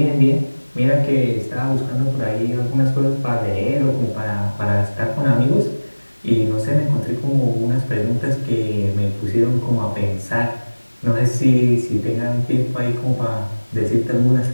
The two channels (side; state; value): both; inverted; correlation -1.00